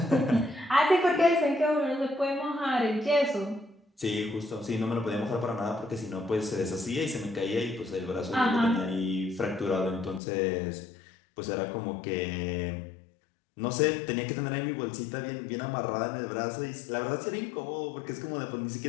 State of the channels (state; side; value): drops out; right; at 10.2 s